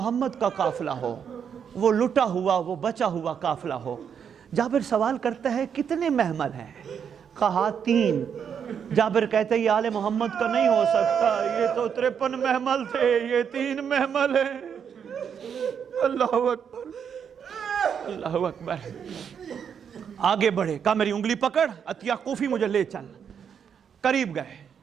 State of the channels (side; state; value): left; quieter; 7.6 dB